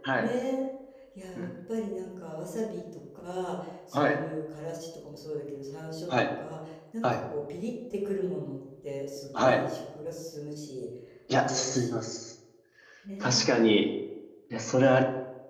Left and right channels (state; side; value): identical; both; correlation 1.00